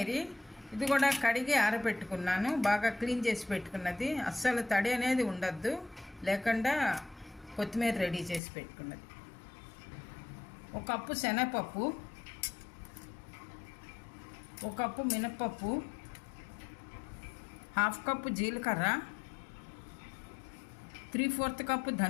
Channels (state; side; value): drops out; right; at 8.4 s